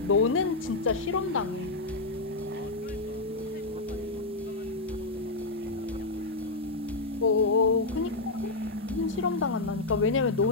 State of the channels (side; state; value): right; quieter; 3.3 dB